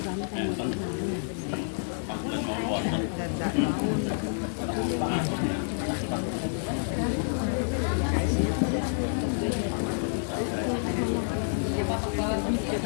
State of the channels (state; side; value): silent; right; digital silence